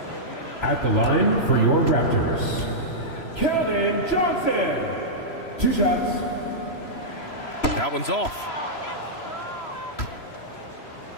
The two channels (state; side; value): late; right; 3.0 ms